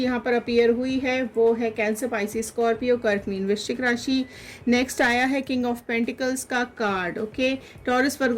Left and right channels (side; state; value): both; identical; correlation 1.00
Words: यहाँ पर अपीयर हुई है वो है कैंसर, पाइसिस, स्कॉर्पियो, कर्क, मीन, वृश्चिक राशि। नेक्स्ट आया है किंग ऑफ पेंटिकल्स का कार्ड। ओके, टॉरस,